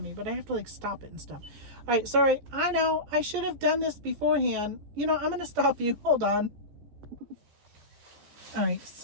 me, but I have to like stop it and stuff. All right, sorry. I know I should have done this beforehand. You know, I'm going to stop you. Hold on. All right,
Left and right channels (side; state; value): left; late; 14 ms